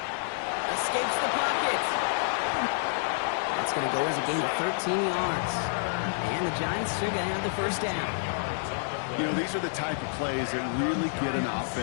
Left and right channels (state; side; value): silent; right; 56 dB below the other